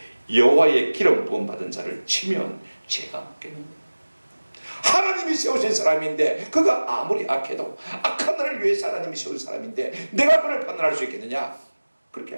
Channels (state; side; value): inverted; both; correlation -1.00